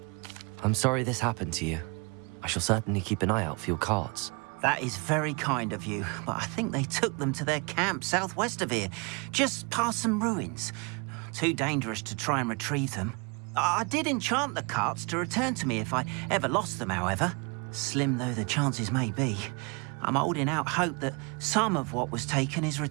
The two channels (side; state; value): left; quieter; 31.4 dB